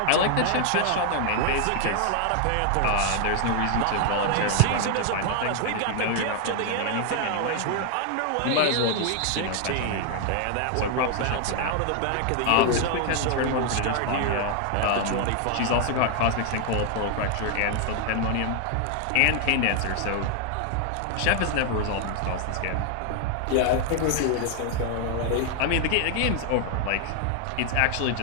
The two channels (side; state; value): both; different; correlation 0.00